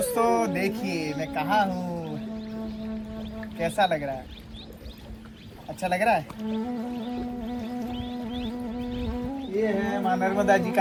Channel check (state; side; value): identical; both; correlation 1.00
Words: देखिए मैं कहाँ हूँ, कैसा लग रहा है? अच्छा लग रहा है? ये है माँ नर्मदा जी